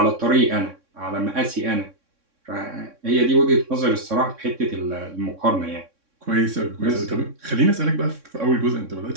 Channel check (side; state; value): left; late; 3.6 ms